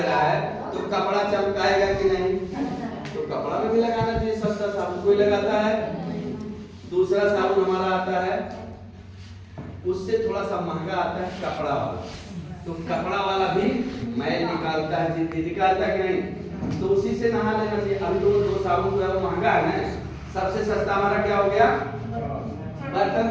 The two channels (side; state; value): both; identical; correlation 1.00